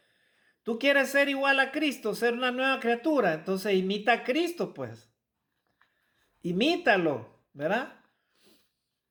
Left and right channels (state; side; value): identical; both; correlation 1.00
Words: Tú quieres ser igual a Cristo, ser una nueva criatura, entonces imita a Cristo, pues. Imítalo, ¿verdad?